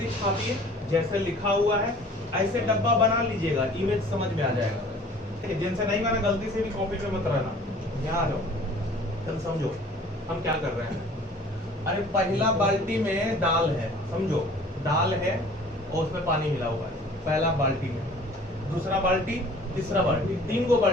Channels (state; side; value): normal; both; correlation 0.49